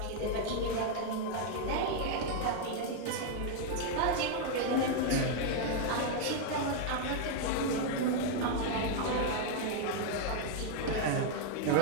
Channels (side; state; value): both; different; correlation 0.00